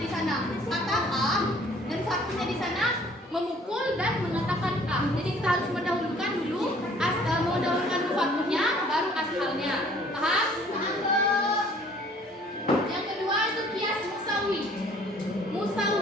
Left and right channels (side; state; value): both; normal; correlation 0.56